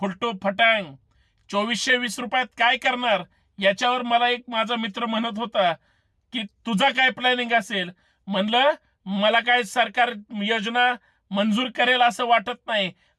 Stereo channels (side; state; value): both; identical; correlation 1.00